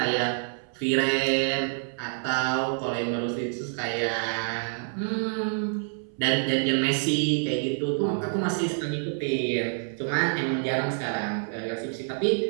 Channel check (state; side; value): silent; left; 60 dB below the other